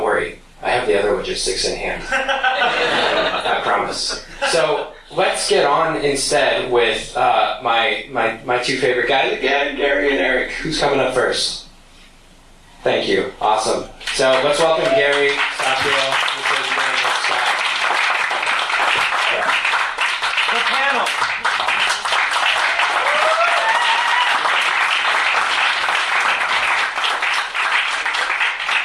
worry. I have the other logistics in hand. I promise. So, let's get on instead with my two favorite guys again, Gary and Eric. Who's coming up first? Thank you. Awesome. So let's welcome Gary, Sachiel, The panel.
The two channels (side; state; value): both; identical; correlation 1.00